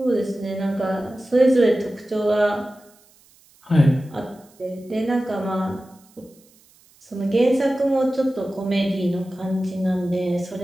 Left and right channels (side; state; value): right; noise; hiss, 30 dB below the sound